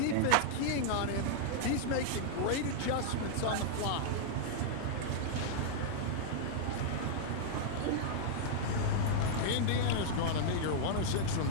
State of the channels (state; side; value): different; both; correlation -0.01